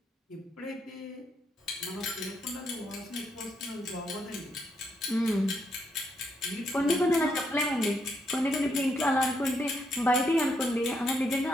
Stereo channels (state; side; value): normal; both; correlation 0.77